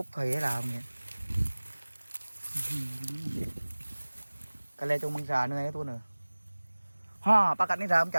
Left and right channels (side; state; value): both; inverted; correlation -1.00